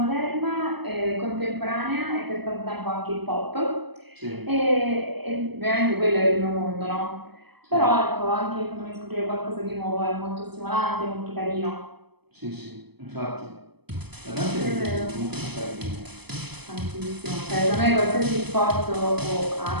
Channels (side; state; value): left; late; 0.98 ms